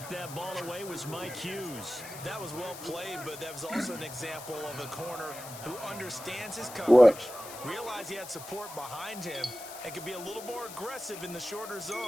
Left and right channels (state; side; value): noise; left; hiss, 13 dB below the sound